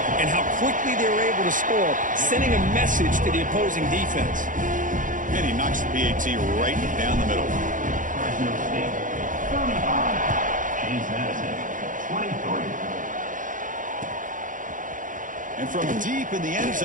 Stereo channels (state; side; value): late; left; 0.38 ms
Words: and how quickly they were able to score, sending a message to the opposing defense. And he knocks the PAT right down the middle. Fresno State, 35. James Madison, 23. And from deep in the end